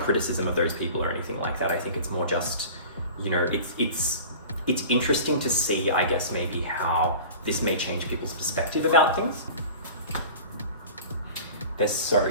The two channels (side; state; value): both; inverted; correlation -0.39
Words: of those people or anything like that. I think it's more just, you know, it's interesting to see, I guess, maybe how this may change people's perspective about things. They're so